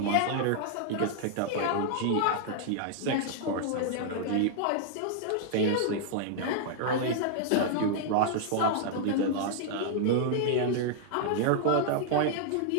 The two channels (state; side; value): different; both; correlation -0.01